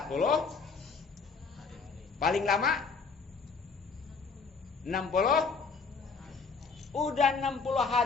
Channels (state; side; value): quieter; right; 4.8 dB